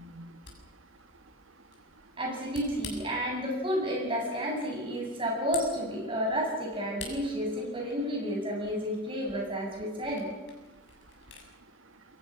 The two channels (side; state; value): both; normal; correlation 0.21